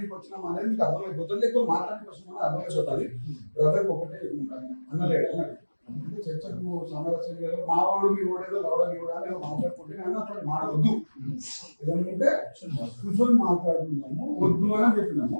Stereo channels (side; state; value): both; inverted; correlation -1.00